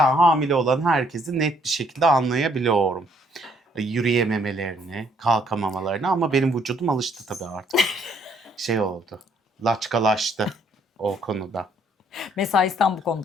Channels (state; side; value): normal; both; correlation 0.66